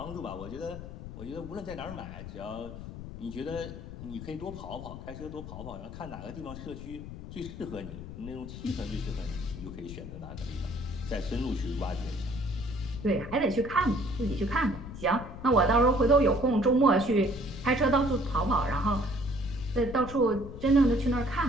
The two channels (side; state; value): left; noise; rumble, 11 dB below the sound